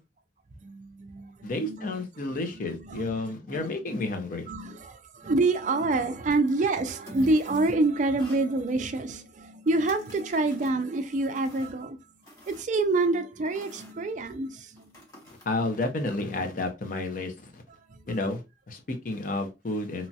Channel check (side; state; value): both; normal; correlation 0.45